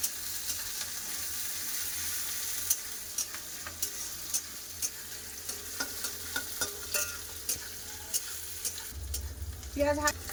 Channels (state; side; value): identical; both; correlation 1.00